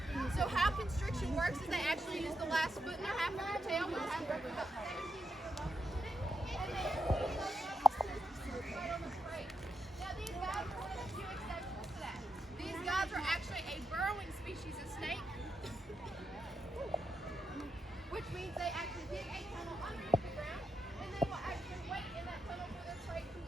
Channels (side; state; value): both; normal; correlation 0.82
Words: So how constriction works is they actually use the last foot in their half of their tail, which has roughly about 17 Now these guys are one of the few exceptions to that. These guys are actually a burrowing species of snake, which means they actually dig a tunnel underneath the ground, and they will actually wait in that tunnel for their prey to